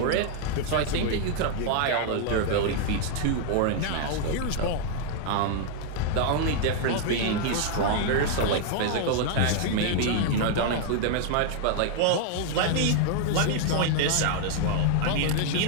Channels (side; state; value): both; different; correlation 0.00